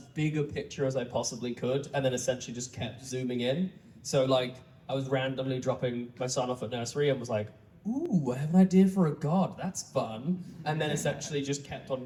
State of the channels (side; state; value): both; identical; correlation 1.00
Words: a picture as I possibly could, and then essentially just kept zooming in. So like I was randomly dropping my son off at nursery and was like, ooh, I have an idea for a god. That's fun. And then essentially just kept on